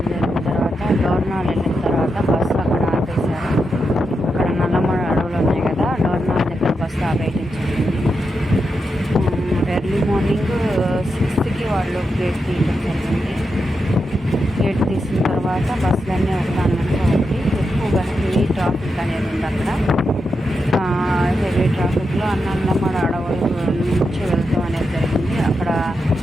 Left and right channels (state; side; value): normal; both; correlation 0.86